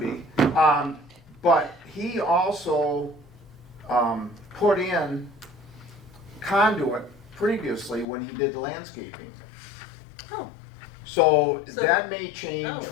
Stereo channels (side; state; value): right; drops out; at 8.1 s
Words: But he also put in conduit previously when he did landscaping. Oh, So So- that may change Oh,